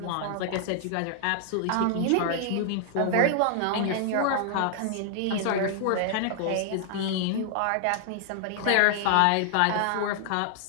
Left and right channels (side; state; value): both; different; correlation 0.00